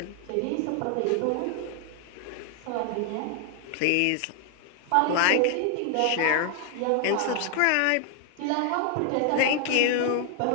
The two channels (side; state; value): both; different; correlation 0.00